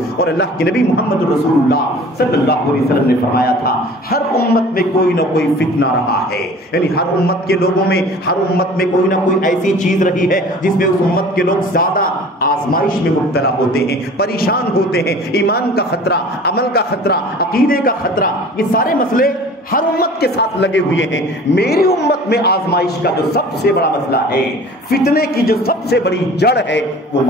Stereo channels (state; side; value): normal; both; correlation 0.44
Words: اور اللہ کے نبی محمد رسول اللہ صلی اللہ علیہ وسلم نے فرمایا تھا ہر امت میں کوئی نہ کوئی فتنہ رہا ہے، یعنی ہر امت کے لوگوں میں، ہر امت میں کوئی نہ کوئی ایسی چیز رہی ہے جس میں اس امت کے لوگ زیادہ آزمائش میں مبتلا ہوتے ہیں، پریشان ہوتے ہیں. ایمان کا خطرہ، عمل کا خطرہ، عقیدے کا خطرہ، یہ سارے مسئلے ہر امت کے ساتھ لگے ہوئے ہیں. میری امت میں آزمائش کا جو سب سے بڑا مسئلہ ہے، فتنے کی جو سب سے بڑی جڑ ہے، وہ